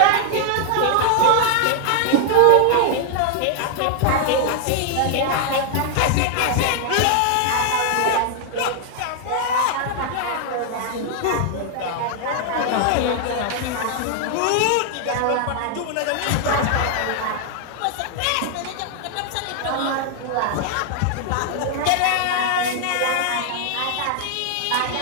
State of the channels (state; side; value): different; both; correlation 0.00